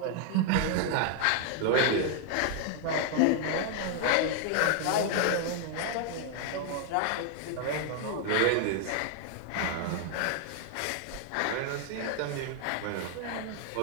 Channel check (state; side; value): different; both; correlation 0.00